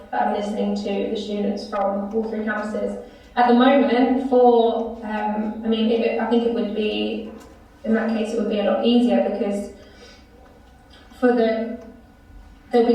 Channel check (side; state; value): both; identical; correlation 1.00